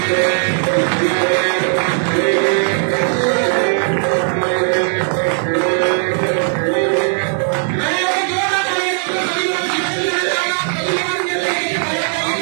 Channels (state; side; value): silent; left; 55 dB below the other